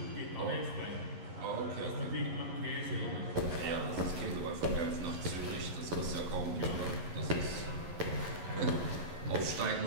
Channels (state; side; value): late; left; 11 ms